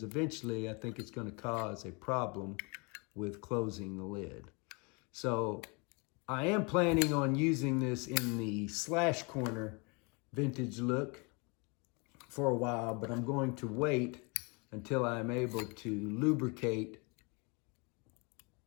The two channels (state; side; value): quieter; right; 30.8 dB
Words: eventually I think it's going to cause a problem with closing the lid. So I am planning on using this in the slash corner vintage look for a while, but I'm going to wait until I'm able to lubricate